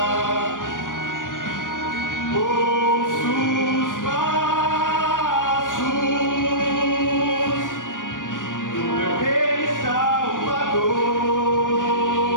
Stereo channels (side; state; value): right; late; 0.88 ms